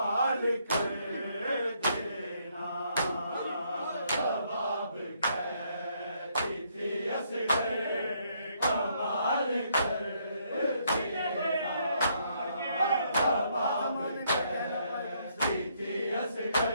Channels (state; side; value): inverted; both; correlation -0.71